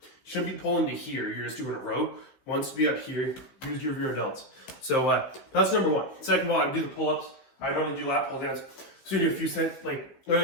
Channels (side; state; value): right; late; 15 ms